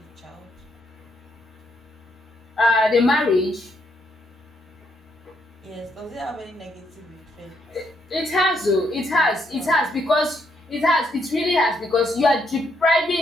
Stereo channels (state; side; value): normal; both; correlation 0.75